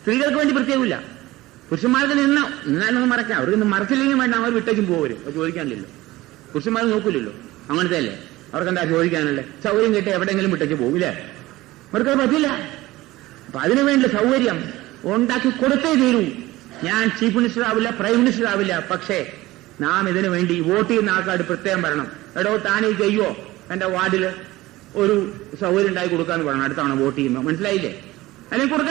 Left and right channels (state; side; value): quieter; left; 18.2 dB